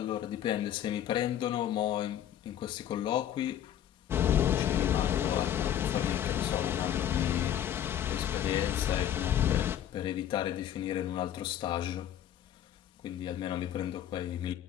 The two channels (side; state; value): right; quieter; 10.7 dB